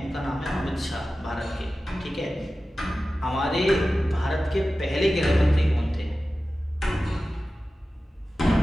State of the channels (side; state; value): both; normal; correlation 0.95